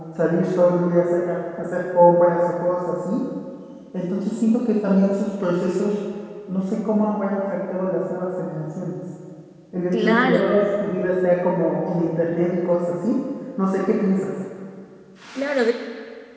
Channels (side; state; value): both; identical; correlation 1.00